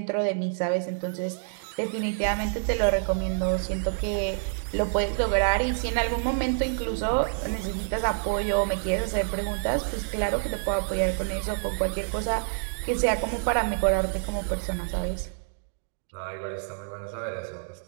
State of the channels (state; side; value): silent; left; digital silence